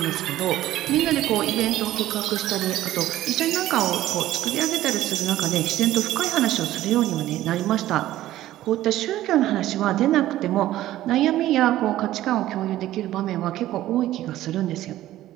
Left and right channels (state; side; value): quieter; left; 14.3 dB